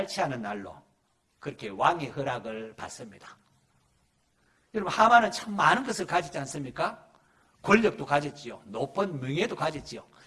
날로 그렇게 왕의 허락을 받습니다. 여러분, 하만은 참 많은 것을 가지지 않습니까? 권력도 가졌지요. 높은 명예도 가졌지요.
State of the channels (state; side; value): identical; both; correlation 1.00